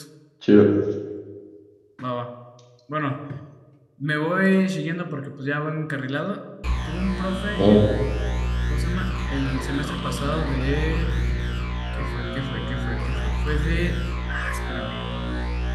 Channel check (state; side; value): identical; both; correlation 1.00